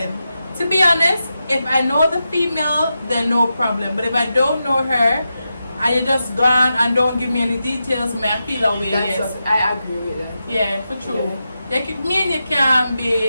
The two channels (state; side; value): inverted; both; correlation -0.89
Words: to be honest, if I know the female, then no problem. But if I don't know her, and you just gone and don't give me any details, may I feel away. Yes. I agree with that. Yeah, for true. Yeah. Me and you can